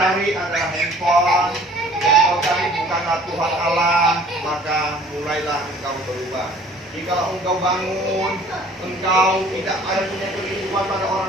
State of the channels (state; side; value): normal; both; correlation 0.52